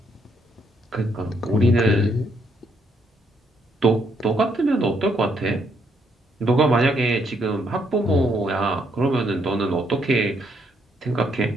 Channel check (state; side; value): normal; both; correlation 0.73